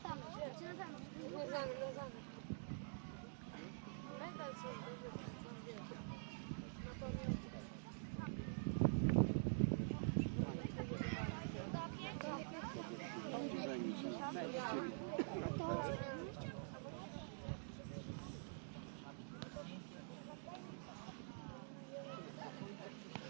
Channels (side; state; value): left; silent; digital silence